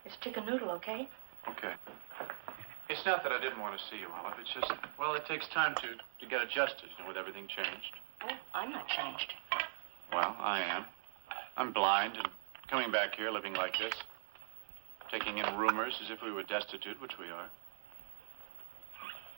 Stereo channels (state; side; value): silent; left; digital silence